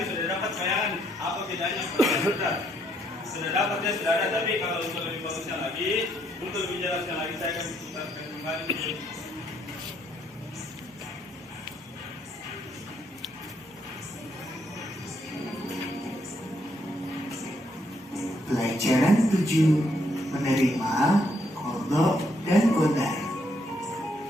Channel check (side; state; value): both; normal; correlation 0.72